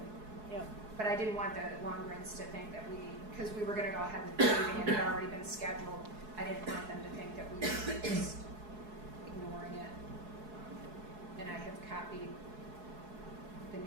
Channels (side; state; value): left; late; 4.7 ms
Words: Yep. But I didn't want the Lundgrens to think that because we were going to go ahead with paving and it had already been scheduled, I didn't want them to think that we were just ignoring it. And I have copied the